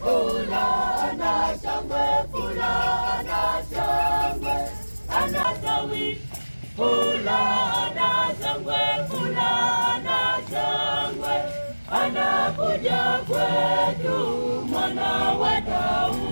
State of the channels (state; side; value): inverted; both; correlation -1.00